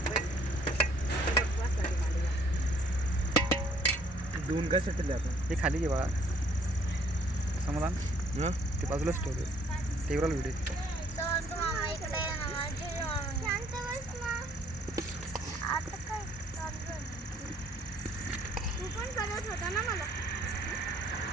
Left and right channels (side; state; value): both; normal; correlation 0.62